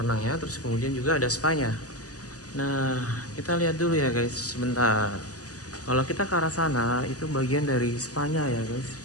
renangnya, terus kemudian juga ada spa-nya. Nah, kita lihat dulu ya guys sebentar. Kalau kita ke arah sana itu bagian dari spa-nya ya guys,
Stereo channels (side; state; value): right; late; 0.67 ms